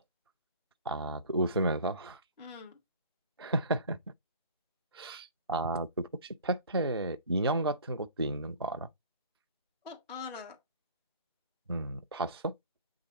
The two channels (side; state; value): both; inverted; correlation -0.44